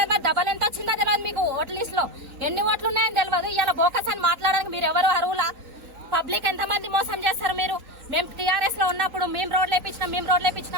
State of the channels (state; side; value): late; left; 3.9 ms